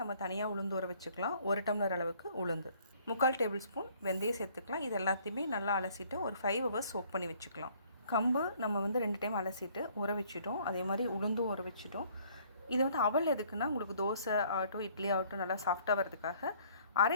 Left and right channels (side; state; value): both; inverted; correlation -0.59